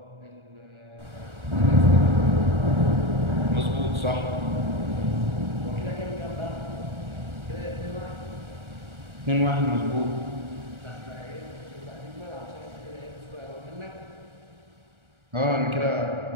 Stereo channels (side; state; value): left; late; 1.4 ms